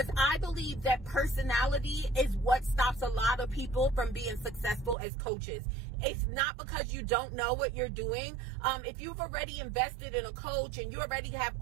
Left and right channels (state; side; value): drops out; left; at 5.0 s